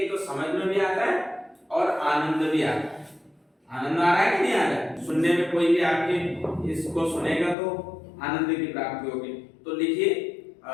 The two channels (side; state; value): right; drops out; at 7.6 s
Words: तो समझ में भी आता है और आनंद भी आता है। आनंद आ रहा है कि नहीं आ रहा है? सुनने में कोई भी आपके इसको सुनेगा तो आनंद की प्राप्ति होगी। तो लिखिए,